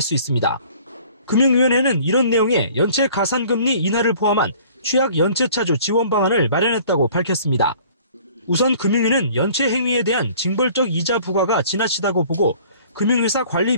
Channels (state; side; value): inverted; both; correlation -0.52